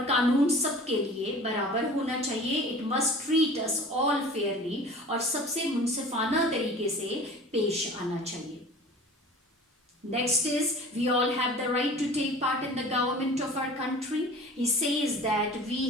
कानून सबके लिए बराबर होना चाहिए. It must treat us all fairly. और सबसे मुनसिफाना तरीके से पेश आना चाहिए. Next is, we all have the right to take part in the government of our country. He says that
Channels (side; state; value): both; normal; correlation 0.42